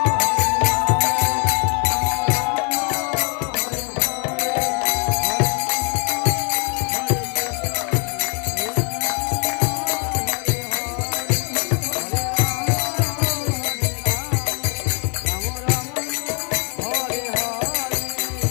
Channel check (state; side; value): quieter; right; 36.6 dB